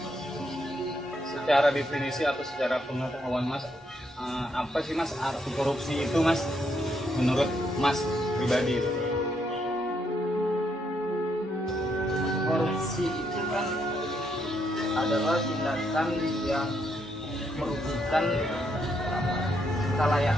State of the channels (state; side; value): normal; both; correlation 0.76